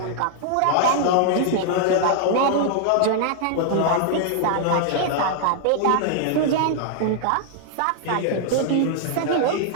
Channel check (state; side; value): different; both; correlation -0.01